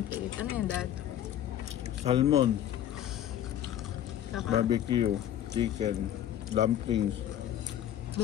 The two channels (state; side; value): quieter; right; 11.2 dB